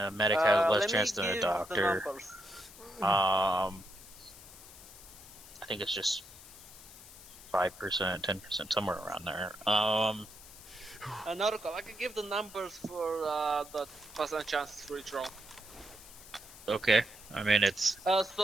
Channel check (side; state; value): left; noise; hiss, 18 dB below the sound